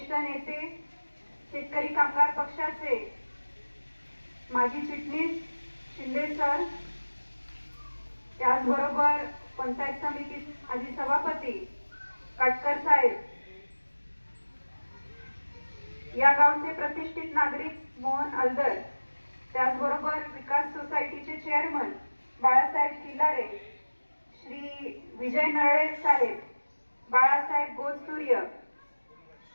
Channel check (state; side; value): inverted; both; correlation -1.00